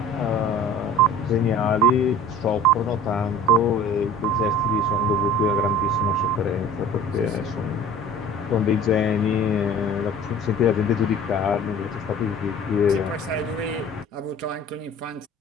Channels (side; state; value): both; normal; correlation 0.45